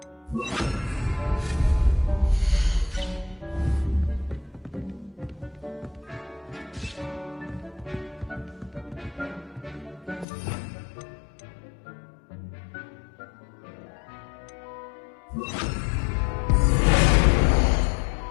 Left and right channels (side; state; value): right; drops out; at 10.2 s